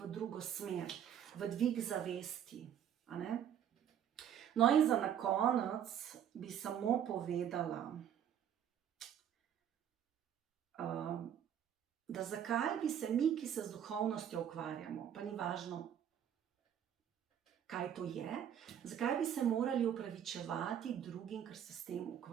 drugo smer, v dvig zavesti. A ne? No in za na konec bi samo povedala, da zakaj bi se mi, ki se z duhovnostjo ukvarjamo, pa ni važno, kaj to je, zakaj bi se morali opravičevati drugim, ker se s tem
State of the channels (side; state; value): left; quieter; 9.5 dB